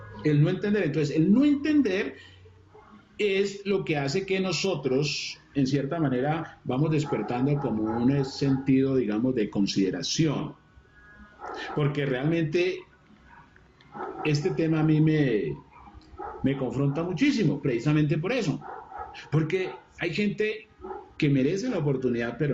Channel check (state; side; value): identical; both; correlation 1.00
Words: Entonces, el no entender es lo que hace que nosotros, en cierta manera, vamos despertando como un sentido, digamos, de consideración. Porque realmente este tema a mí me confronta muchísimo, precisamente por eso. Porque hay gente que merece la oportunidad,